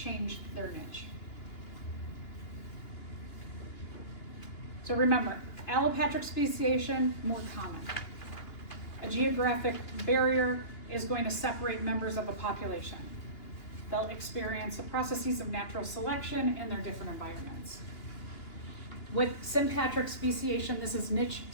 their niche. So remember, allopatric speciation, more common. A geographic barrier is going to separate members of a population. They'll experience the processes of natural selection in their different environments. With sympatric speciation, this is niche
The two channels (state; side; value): late; right; 2.9 ms